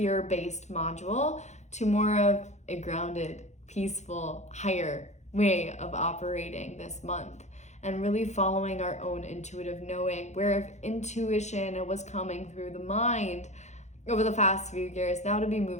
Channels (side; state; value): right; late; 0.33 ms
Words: module to more of a grounded, peaceful, higher way of operating this month. And really following our own intuitive knowing, where if intuition was coming through the mind over the past few years, now to be